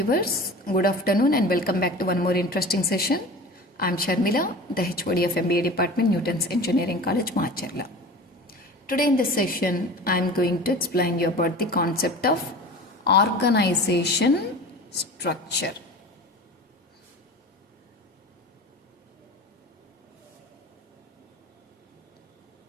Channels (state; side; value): normal; both; correlation 0.36